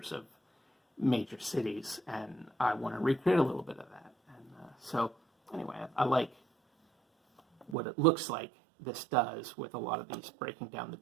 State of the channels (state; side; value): drops out; left; at 7.8 s